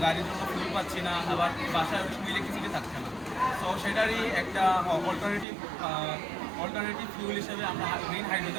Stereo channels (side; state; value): left; drops out; at 5.5 s